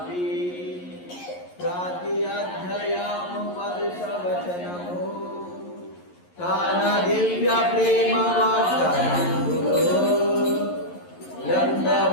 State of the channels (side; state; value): right; late; 11 ms